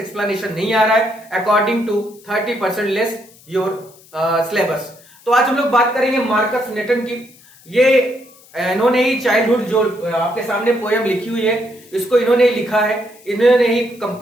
नहीं आ रहा है according to 30% less your syllabus. तो आज हम लोग बात करेंगे मार्कस नेटन की। ये इन्होंने ही चाइल्डहुड जो आपके सामने पोयम लिखी हुई है, इसको इन्होंने ही लिखा है, इन्होंने ही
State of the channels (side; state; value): left; noise; hiss, 26 dB below the sound